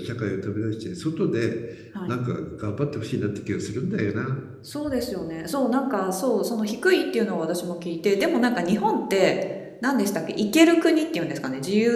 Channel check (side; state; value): both; identical; correlation 1.00